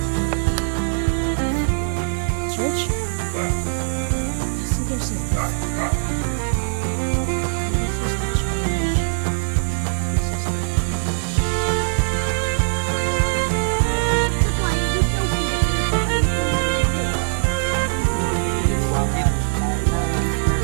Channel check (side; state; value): left; silent; 65 dB below the other